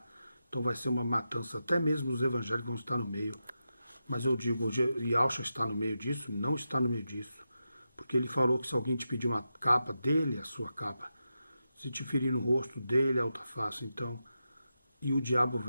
Então vai ser uma matança, até mesmo os evangélicos vão estar no meio. Mas eu digo, Yahshua está no meio disso? Não está no meio disso. Porque ele falou que se alguém te pedir uma capa dele, a sua capa. Se te ferir no rosto dele, a outra face. Então, e o diabo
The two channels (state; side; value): inverted; both; correlation -0.89